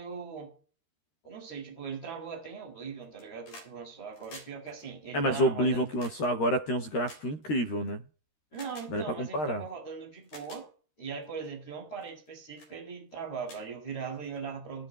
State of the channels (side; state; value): right; late; 13 ms